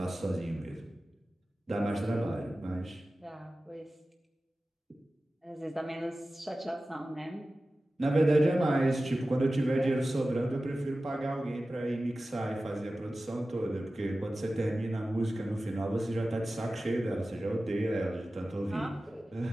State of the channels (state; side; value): normal; both; correlation 0.95